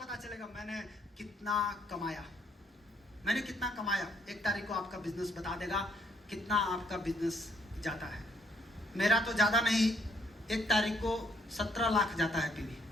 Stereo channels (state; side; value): normal; both; correlation 0.69